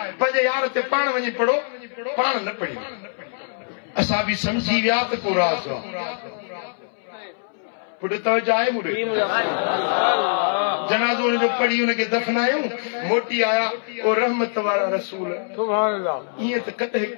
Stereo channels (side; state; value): right; silent; 63 dB below the other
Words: पंहिंजे यार ते पाण वञी पढ़ो पाण न पढ़ी असां बि सम्झी विया त को राज़ पुट तवज्जो आहे मुड़े जनाज़ो उनजो पढ़ी उनखे दफनायूं मोटी आया ओ रहमत वारा रसूल सुभान अल्लाह ईअं त कॾहिं